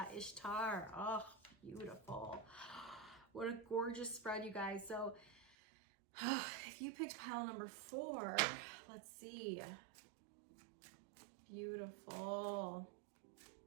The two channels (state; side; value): drops out; left; at 5.6 s